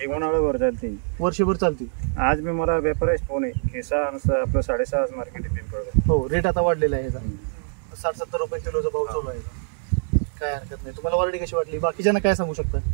एक उन्हाळ्यावर चालते, वर्षभर चालते. आज मी मला व्यापारीच फोन आहे की आपलं 6.5 मार्केट आहे पिंपळगाव. हो. रेट आता वाढलेला आहे. 60-70 रुपये किलोचा भाव चालू आहे. काय हरकत नाही. तुम्हाला व्हरायटी कशी वाटली? बाकीच्यांना काय सांगू शकता?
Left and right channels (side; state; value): left; silent; 62 dB below the other